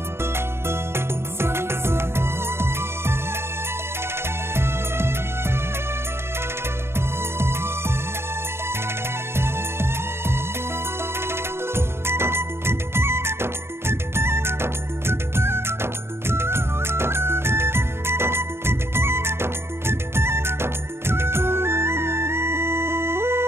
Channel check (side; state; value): left; late; 0.12 ms